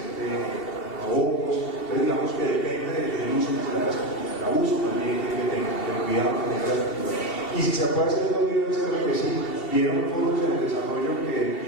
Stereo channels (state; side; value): late; right; 2.7 ms